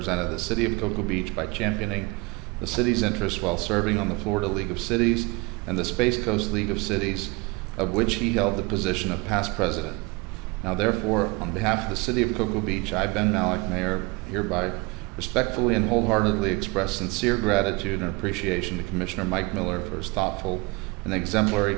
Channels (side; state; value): left; quieter; 26.3 dB